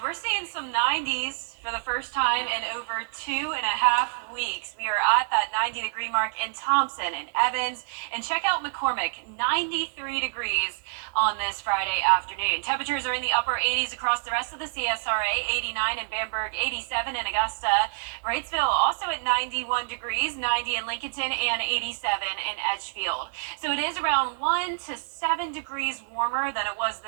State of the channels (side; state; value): left; silent; 60 dB below the other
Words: we're seeing some 90s for the first time in over 2.5 weeks. We are at that 90-degree mark in Thompson and Evans. And check out McCormick, 93 degrees on this Friday afternoon. Temperatures are in the upper 80s across the rest of the CSRA, 89 in Bamberg, 87 in Augusta. Wrightsville also at 91 degrees, 90 in Lincolnton, and 87 in Edgefield. So it is around 1 to 7 degrees warmer than it was